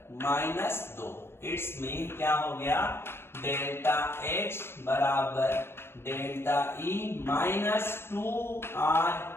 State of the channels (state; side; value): late; right; 0.12 ms